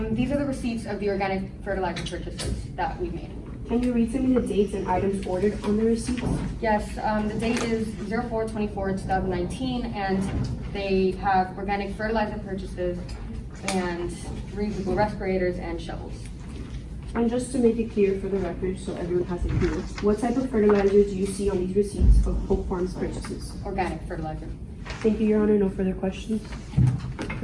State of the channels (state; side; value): identical; both; correlation 1.00